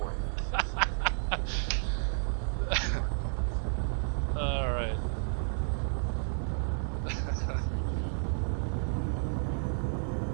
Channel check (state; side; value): silent; left; digital silence